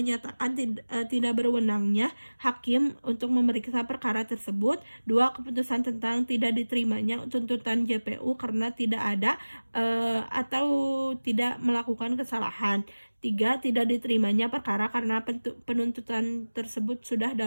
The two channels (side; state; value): both; inverted; correlation -1.00